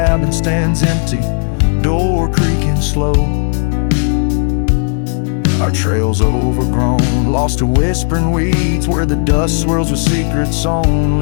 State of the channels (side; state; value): right; silent; 57 dB below the other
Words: stands empty, door creaking slow. Our trails overgrown, lost to whispering weeds, where the dust swirls with secrets